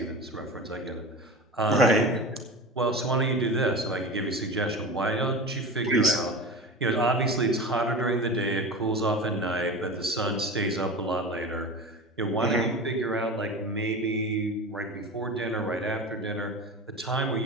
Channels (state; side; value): normal; both; correlation 0.30